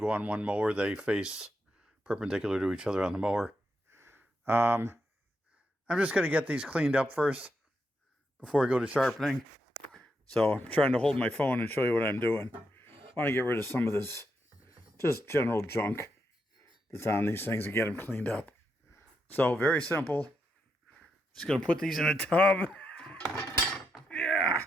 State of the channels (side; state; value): both; normal; correlation 0.82